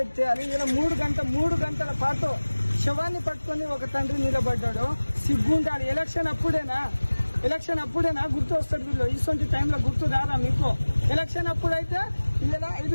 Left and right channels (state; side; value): inverted; both; correlation -1.00